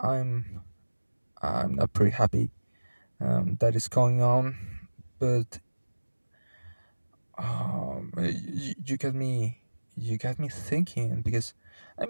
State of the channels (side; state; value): both; inverted; correlation -1.00